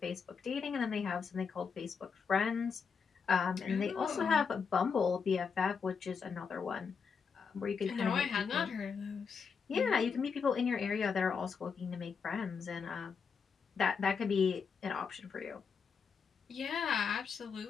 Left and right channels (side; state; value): right; quieter; 5.9 dB